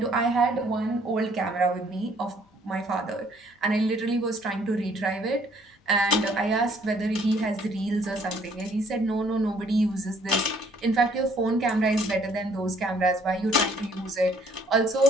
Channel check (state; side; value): normal; both; correlation 0.62